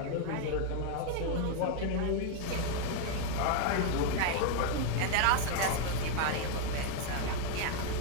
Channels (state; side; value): different; both; correlation 0.01